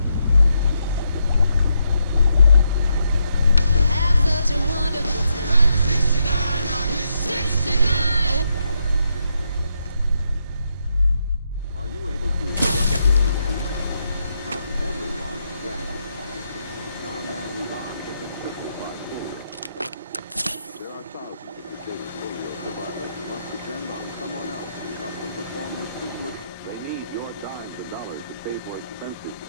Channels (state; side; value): inverted; both; correlation -0.79